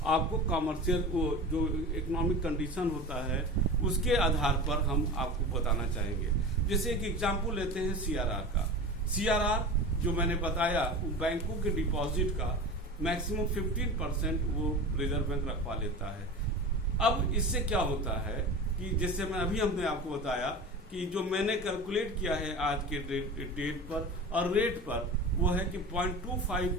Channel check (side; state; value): both; normal; correlation 0.32